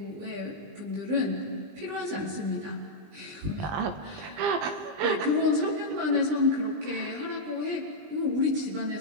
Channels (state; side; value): late; left; 20 ms